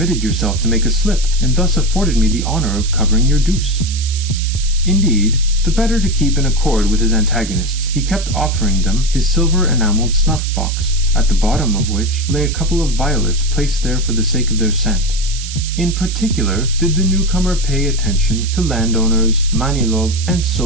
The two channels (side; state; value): right; noise; hiss, 10 dB below the sound